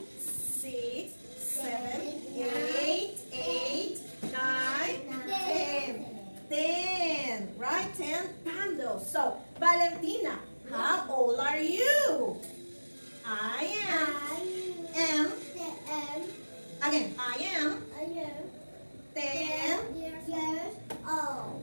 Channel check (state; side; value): inverted; both; correlation -1.00